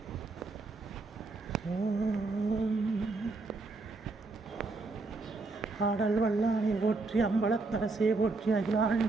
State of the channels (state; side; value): quieter; left; 3.6 dB